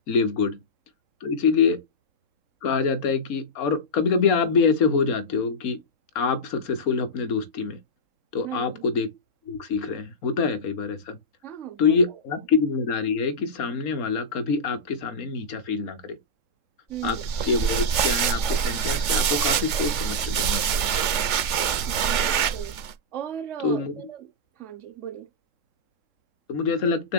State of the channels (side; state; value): right; late; 3.4 ms